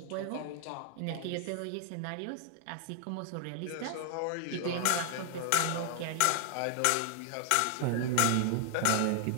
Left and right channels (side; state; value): both; different; correlation 0.00